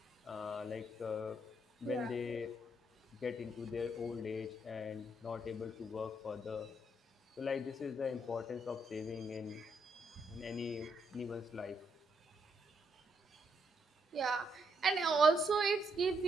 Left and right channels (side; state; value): both; normal; correlation 0.76